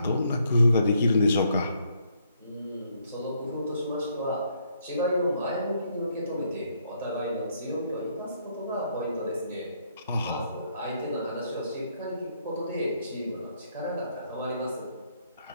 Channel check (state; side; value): inverted; both; correlation -0.72